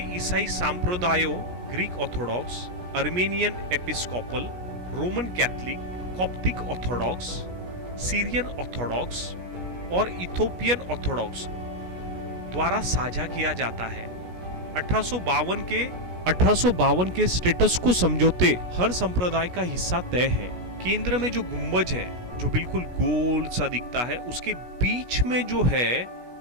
ईसाई संप्रदायों, Greek Orthodox, Armenian Episcopal, Roman Catholic, Coptic Orthodox, Syrian Orthodox और इथोपियन ऑर्थोडॉक्स द्वारा साझा किया जाता है। 1852 के स्टेटस को समझौते हर संप्रदाय का हिस्सा तय है। केंद्र में जो गुंबज है, जो बिल्कुल गोल सा दिखता है, उसके बीच में जो है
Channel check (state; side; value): late; left; 17 ms